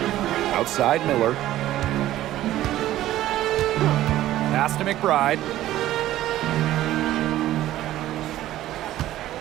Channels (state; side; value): quieter; left; 14.2 dB